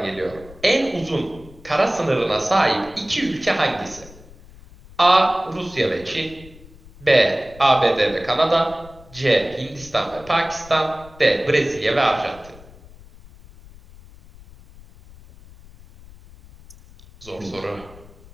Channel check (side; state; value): left; noise; rumble, 21 dB below the sound